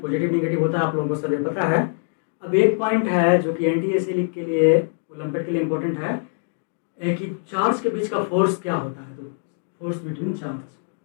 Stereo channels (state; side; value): silent; right; 63 dB below the other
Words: निगेटिव होता है, आप लोगों को सब पता है। अब एक पॉइंट है जो कि एंटी-एसिलिक के लिए, ओलंपिक के लिए इंपॉर्टेंट है, कि चार्ज के बीच का फोर्स क्या होता है। तो फोर्स बिटवीन चार्ज